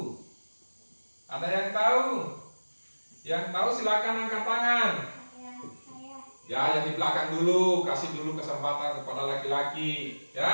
Ada yang tahu? Yang tahu silakan angkat tangan. Saya. Ya, yang di belakang dulu, kasih dulu kesempatan kepada laki-laki,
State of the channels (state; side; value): inverted; both; correlation -1.00